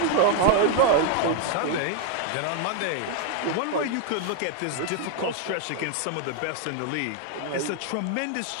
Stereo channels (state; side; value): different; both; correlation 0.00